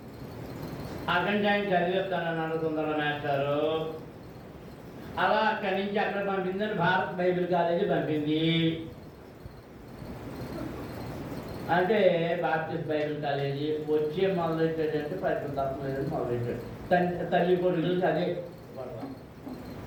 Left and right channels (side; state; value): both; identical; correlation 1.00